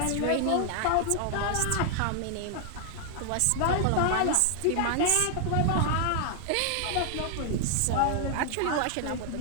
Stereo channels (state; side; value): different; both; correlation -0.01